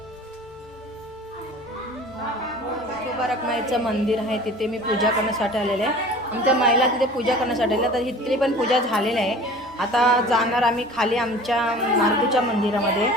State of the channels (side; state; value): both; normal; correlation 0.43